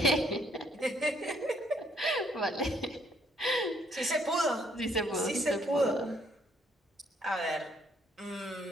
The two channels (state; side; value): normal; both; correlation 0.66